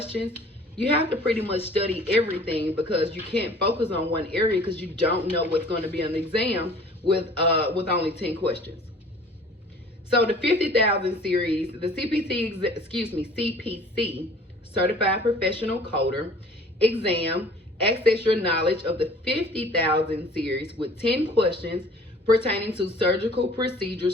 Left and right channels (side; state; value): both; normal; correlation 0.50